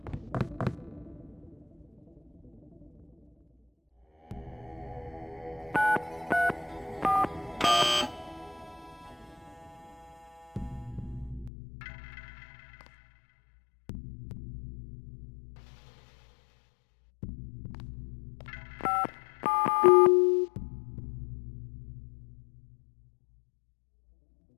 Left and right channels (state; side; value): drops out; right; at 11.5 s